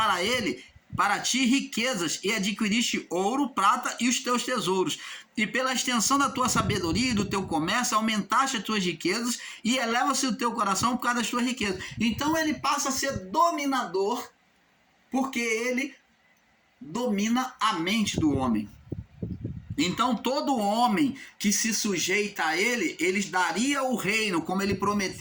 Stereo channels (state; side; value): identical; both; correlation 1.00